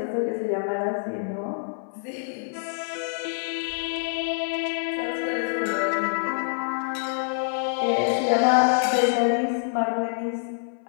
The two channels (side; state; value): right; silent; 57 dB below the other